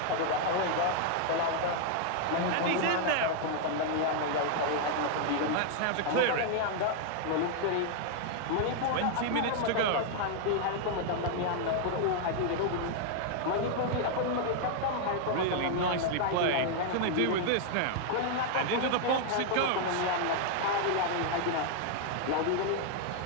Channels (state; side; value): different; both; correlation 0.00